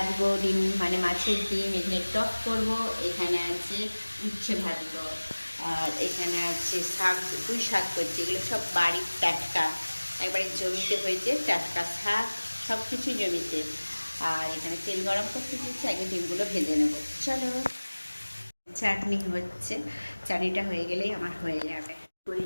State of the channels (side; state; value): both; inverted; correlation -1.00